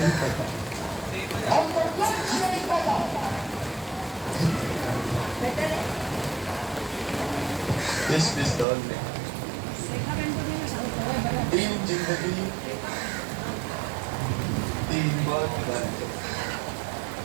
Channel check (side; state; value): left; drops out; at 8.7 s